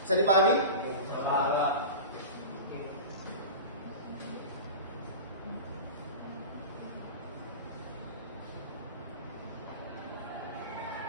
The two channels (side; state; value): both; inverted; correlation -0.31